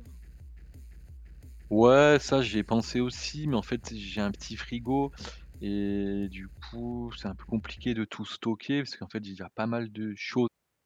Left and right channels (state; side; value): identical; both; correlation 1.00